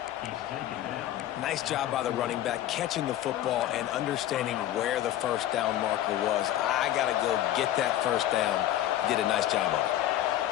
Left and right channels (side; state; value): right; quieter; 12.9 dB